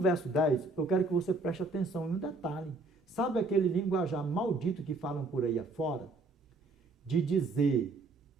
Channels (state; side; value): quieter; left; 3.3 dB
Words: 10, eu quero que você preste atenção em um detalhe. Sabe aquele linguajar maldito que falam por aí afora? De dizer